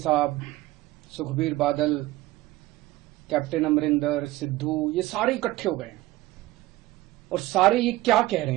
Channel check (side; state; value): left; quieter; 17.7 dB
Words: सुखबीर बादल, कैप्टन अमरिंदर, सिद्धू, ये सारे इकट्ठे हो गए हैं। और सारे ये क्या कह रहे